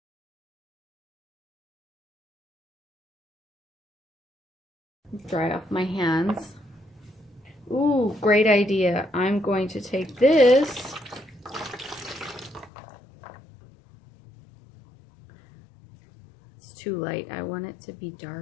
Dry off my hands. Ooh, great idea. I'm going to take this too light. I want it to be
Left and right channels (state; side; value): drops out; right; at 12.7 s